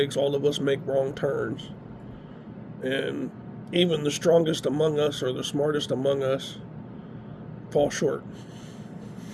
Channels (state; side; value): identical; both; correlation 1.00